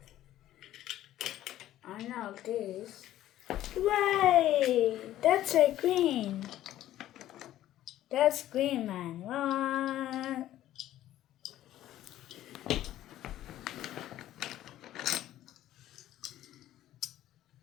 I know this. Wait, that's a green. That's green, man. What?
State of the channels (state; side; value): quieter; right; 13.4 dB